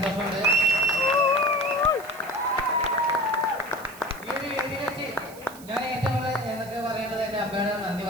ഈ ഒരു വേദിയിൽ വെച്ച് ഞാൻ ഏറ്റവും കൂടുതൽ എന്നൊക്കെ പറയേണ്ടത് എൻ്റെ അമ്മയോടാണ് നന്ദി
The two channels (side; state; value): right; noise; hiss, 19 dB below the sound